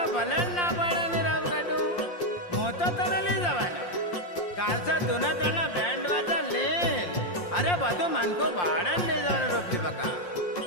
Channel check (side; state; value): right; late; 5.7 ms